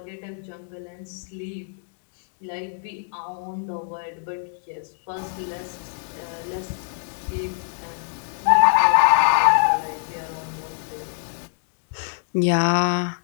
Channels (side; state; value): right; silent; digital silence